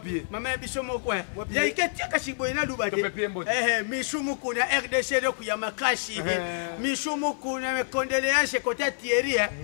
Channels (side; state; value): right; silent; 60 dB below the other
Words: mama na biso mo kwa ya iketi akashiboye na luba de mishumu kuna RDC le kuyama kashi mishumu kuna me condoléances côté Thierry